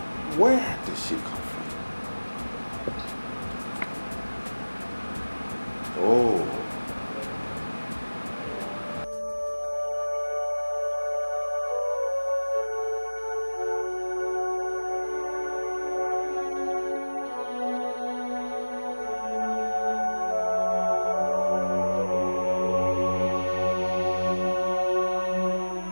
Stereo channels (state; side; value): inverted; both; correlation -1.00